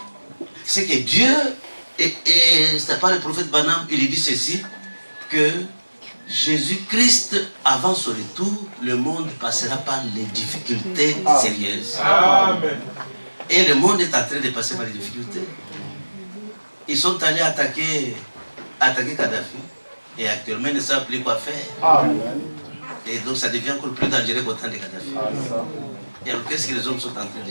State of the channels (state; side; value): inverted; both; correlation -1.00